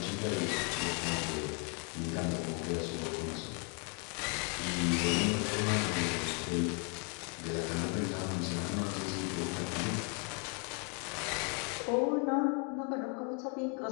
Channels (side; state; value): right; quieter; 36.4 dB